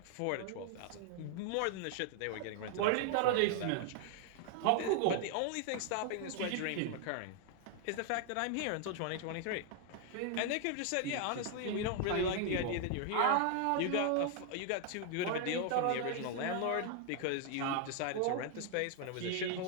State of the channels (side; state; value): both; different; correlation 0.00